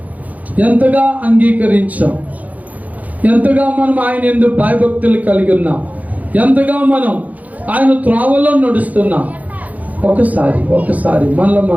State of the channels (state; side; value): late; left; 0.076 ms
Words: ఎంతగా అంగీకరించాం, ఎంతగా మనం ఆయన యందు భయభక్తులు కలిగి ఉన్నాం, ఎంతగా మనం ఆయన త్రోవలో నడుస్తున్నాం. ఒకసారి మనలో